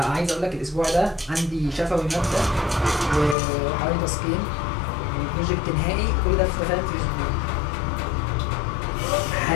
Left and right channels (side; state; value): right; drops out; at 3.4 s